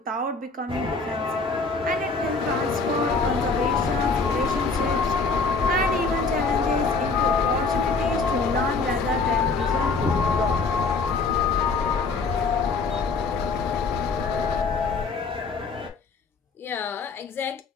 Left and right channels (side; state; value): right; quieter; 4.2 dB